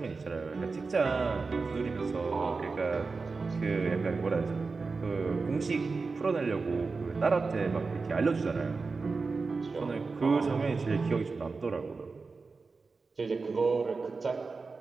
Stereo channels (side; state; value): left; quieter; 4.3 dB